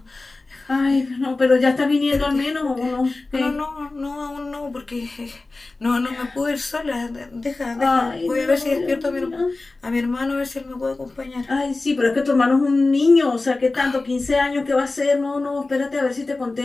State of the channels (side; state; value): right; quieter; 3.3 dB